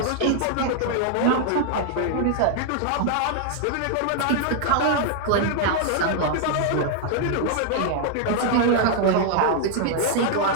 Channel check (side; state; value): both; different; correlation 0.00